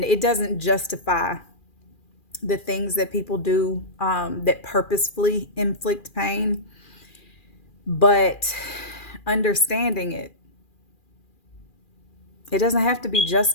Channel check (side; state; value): right; late; 2.4 ms